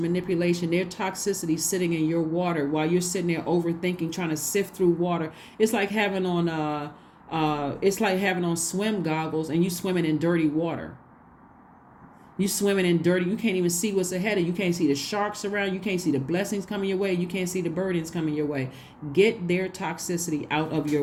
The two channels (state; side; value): identical; both; correlation 1.00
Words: their toxicity sitting in your water while you're sitting there overthinking, trying to sift through water? It's like having on swim goggles and you swimming in dirty water. You swimming in dirty. You can't even see what's ahead of you. You can't see the sharks around. You can't see the blessings coming your way. You can't see the burdens coming your way. Get their toxicity out of your